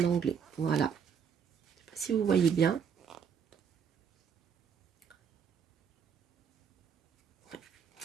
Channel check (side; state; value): left; quieter; 7.1 dB